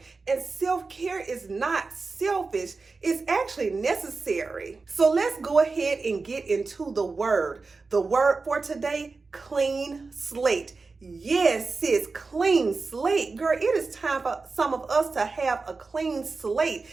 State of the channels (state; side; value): quieter; left; 4.1 dB